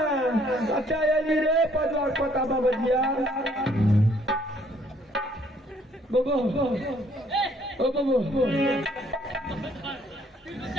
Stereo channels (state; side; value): normal; both; correlation 0.64